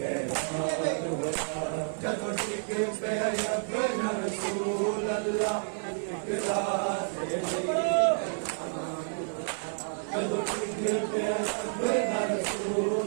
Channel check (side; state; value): left; silent; 58 dB below the other